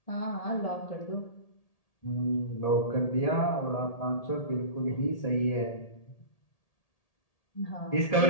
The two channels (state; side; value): late; right; 1.8 ms